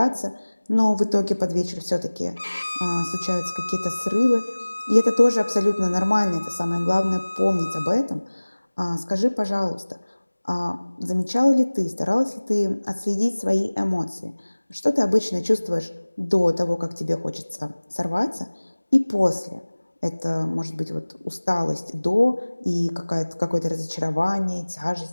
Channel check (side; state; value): both; inverted; correlation -1.00